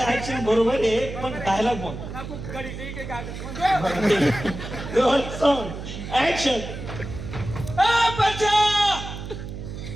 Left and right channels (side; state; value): right; noise; hum, 9 dB below the sound